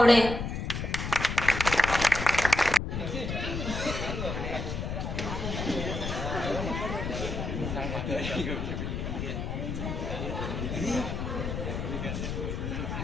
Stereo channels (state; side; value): noise; left; rumble, 3 dB below the sound